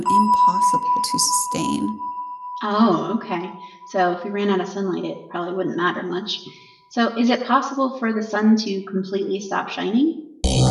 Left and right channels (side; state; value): both; identical; correlation 1.00